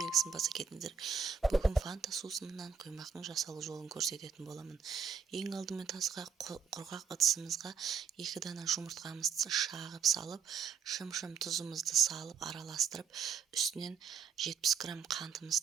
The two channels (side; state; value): left; quieter; 6.4 dB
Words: баса кетіңіздер. Бүгін фанта сусынынан құймақтың жасалу жолын көрсететін боламын. Ең алдымен тазға құрғақ ыдысымызға 2 дана жұмыртқамызды шағып салып, шым-шым тұзымызды салып араластырып, үстінен 70 грамм